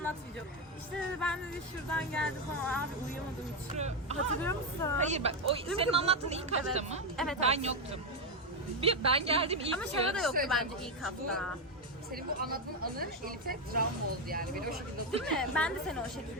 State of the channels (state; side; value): normal; both; correlation 0.07